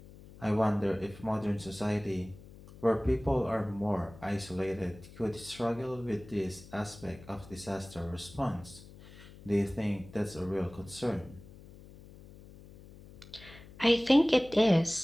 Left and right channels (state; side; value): noise; left; hum, 19 dB below the sound